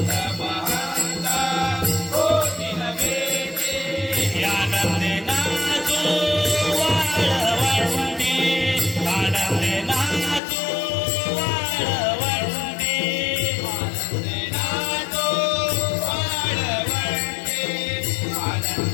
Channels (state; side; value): drops out; right; at 10.4 s